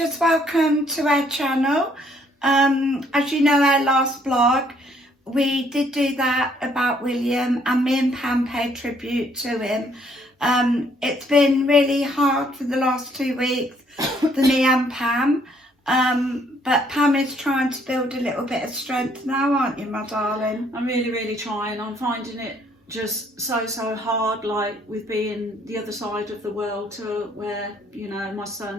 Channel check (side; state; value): both; normal; correlation 0.66